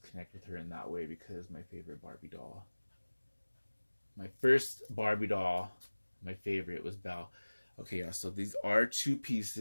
with her in that way, because my favorite Barbie doll. My first Barbie doll, my favorite, was Belle. Okay, yeah, so these are 2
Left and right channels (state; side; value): inverted; both; correlation -1.00